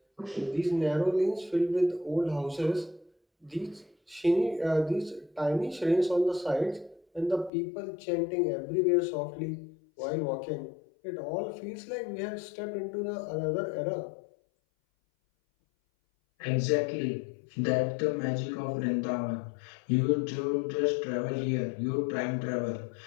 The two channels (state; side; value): drops out; right; at 7.5 s